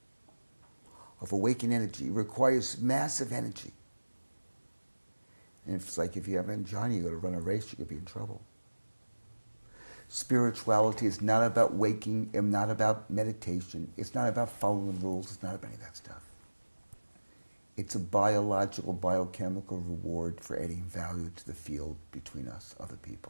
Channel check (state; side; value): inverted; both; correlation -1.00